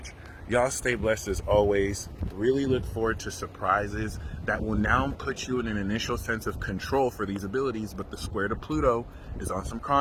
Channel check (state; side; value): identical; both; correlation 1.00